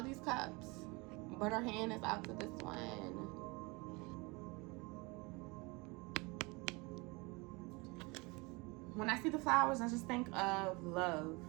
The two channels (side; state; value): left; quieter; 26.7 dB